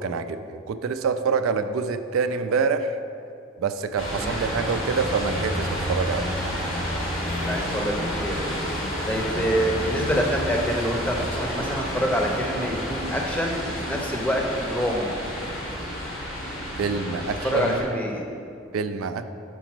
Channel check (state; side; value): normal; both; correlation 0.32